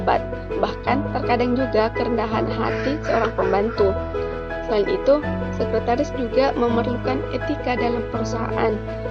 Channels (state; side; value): identical; both; correlation 1.00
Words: Bahkan terkadang juga kerendahan hati seorang pembantu. Selain itu, sekretaris juga memerlukan etika dalam perusahaan